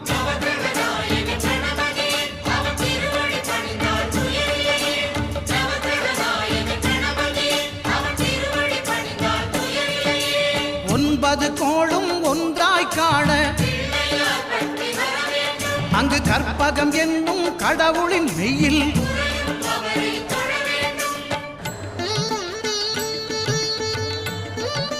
ஒன்பது கோளும் ஒன்றாய் காண அங்கு கற்பகம் என்னும் கடவுளின் மெய்யில்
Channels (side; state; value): both; identical; correlation 1.00